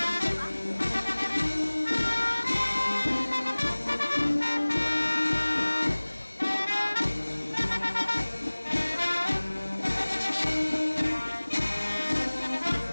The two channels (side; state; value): both; inverted; correlation -1.00